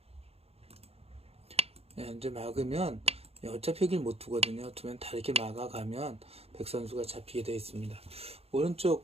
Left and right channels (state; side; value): late; left; 0.29 ms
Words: 이제 막으면 어차피 여길 못 두거든요. 두면 다 이렇게 막아가면 백 선수가 잡히게 되어 있습니다.